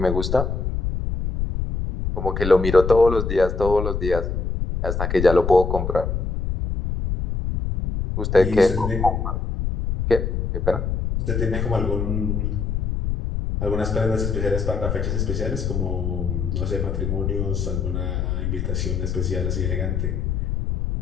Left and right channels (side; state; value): left; noise; rumble, 1 dB below the sound